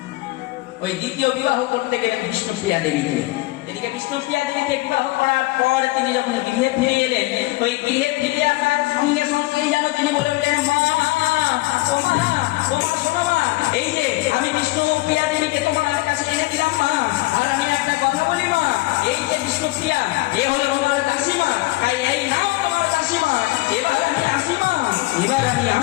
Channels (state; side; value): quieter; right; 20.8 dB